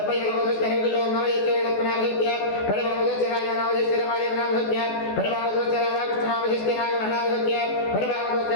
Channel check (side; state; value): right; late; 14 ms